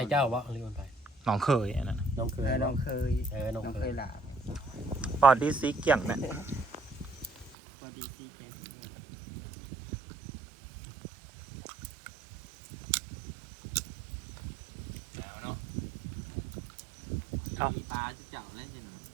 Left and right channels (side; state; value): left; drops out; at 7.5 s